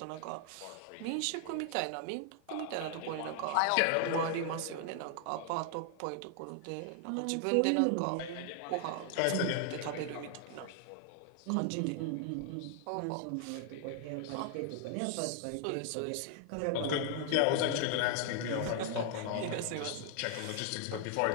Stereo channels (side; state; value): both; different; correlation 0.00